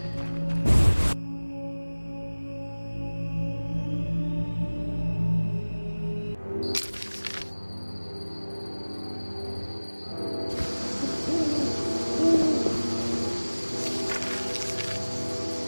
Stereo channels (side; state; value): both; inverted; correlation -1.00